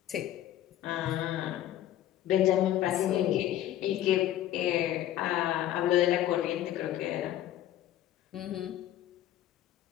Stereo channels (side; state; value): right; quieter; 12.5 dB